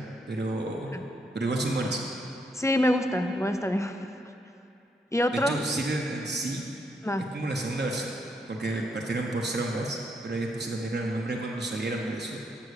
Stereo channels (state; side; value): normal; both; correlation 0.76